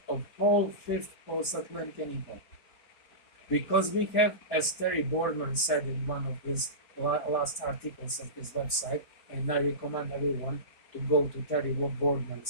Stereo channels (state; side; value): late; right; 4.3 ms